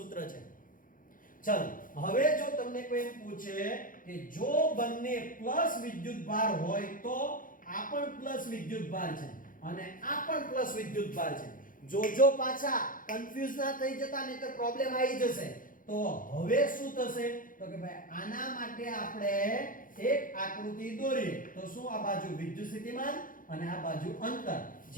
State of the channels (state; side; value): late; right; 0.40 ms